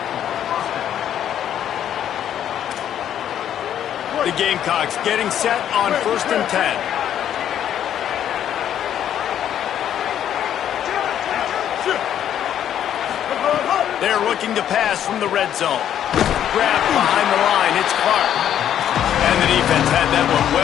The Gamecocks getting set on 1st and 10. They're looking to pass from the red zone. Grabbed behind the line. It's Clark. And the defense had that one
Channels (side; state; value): right; quieter; 10.2 dB